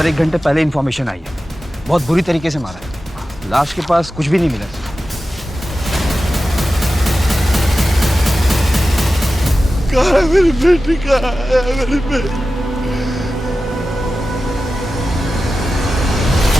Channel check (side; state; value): both; normal; correlation 0.94